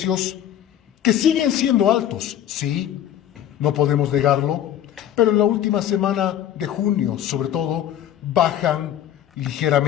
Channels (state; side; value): quieter; right; 11.0 dB